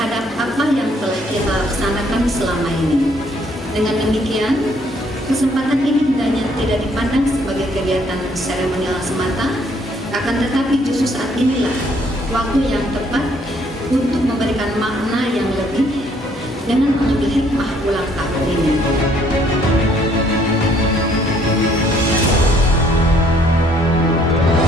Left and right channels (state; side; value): normal; both; correlation 0.64